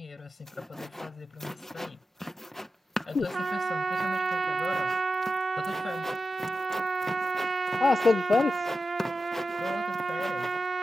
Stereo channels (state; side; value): normal; both; correlation 0.91